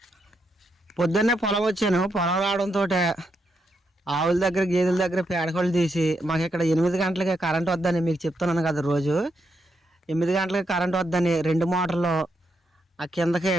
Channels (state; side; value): normal; both; correlation 0.81